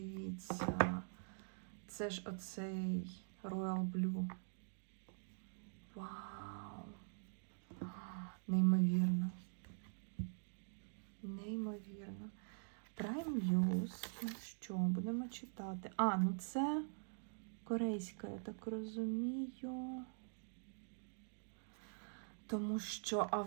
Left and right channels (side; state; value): left; silent; digital silence